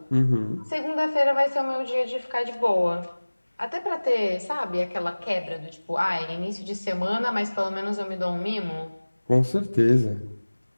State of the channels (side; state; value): both; inverted; correlation -1.00